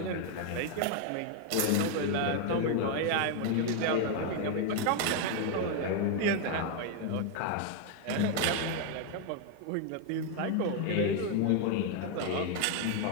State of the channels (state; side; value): different; both; correlation 0.01